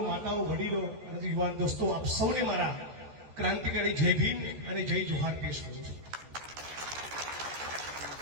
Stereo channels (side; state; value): left; late; 14 ms